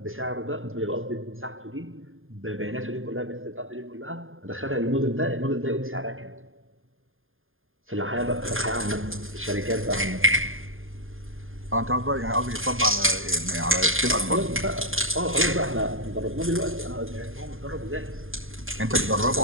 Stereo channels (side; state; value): left; late; 0.59 ms